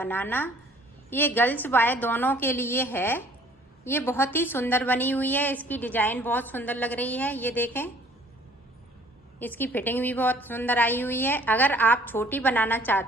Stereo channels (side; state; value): both; normal; correlation 0.55